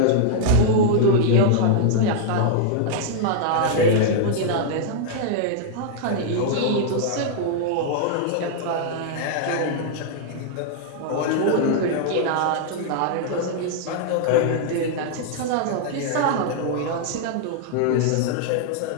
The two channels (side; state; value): both; different; correlation -0.01